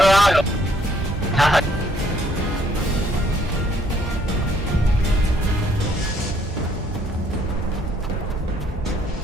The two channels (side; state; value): both; normal; correlation 0.66